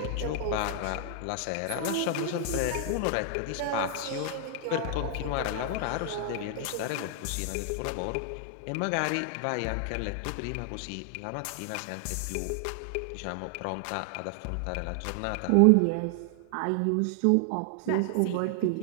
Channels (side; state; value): both; different; correlation 0.00